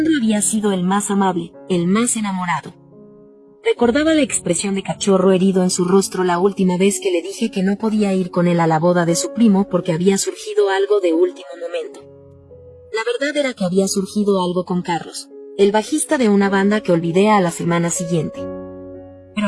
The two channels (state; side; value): identical; both; correlation 1.00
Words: había sido el más amable, el más enamorado. Recordaba la expresión de cachorro herido en su rostro la última vez que le dije que no podía ir con él a la boda de su primo porque había surgido algo de último momento. La verdad era que había surgido algo con Carlos, el bajista de una banda que olvidé a la semana siguiente. Pero